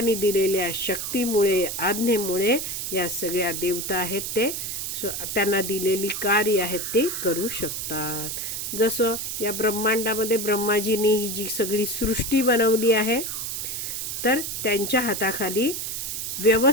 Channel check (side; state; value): right; noise; hiss, 4 dB below the sound